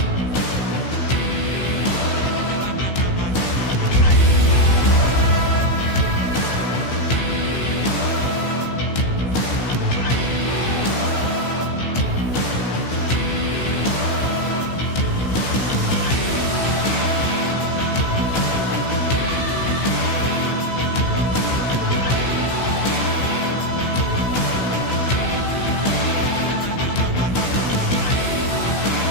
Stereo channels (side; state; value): right; late; 16 ms